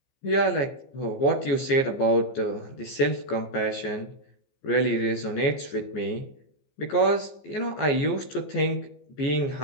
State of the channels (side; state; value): right; late; 15 ms